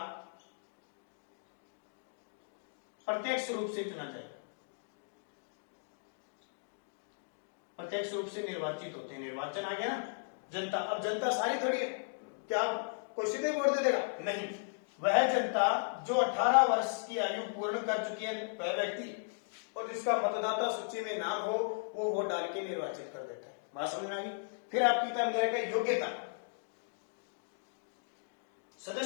प्रत्यक्ष रूप से चुना जाएगा, प्रत्यक्ष रूप से निर्वाचित होते हैं। निर्वाचन आ गया ना, जनता, अब जनता सारी थोड़ी है, क्या कोई सीधे वोट दे देगा, नहीं, वह जनता जो 18 वर्ष की आयु पूर्ण कर चुकी है वह व्यक्ति और जिसका मतदाता सूची में नाम हो, वो वोट डाल के निर्वाचित कर देता है। बात समझ में आ गई। फिर आपकी तरफ योग्यता,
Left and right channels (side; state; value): right; silent; digital silence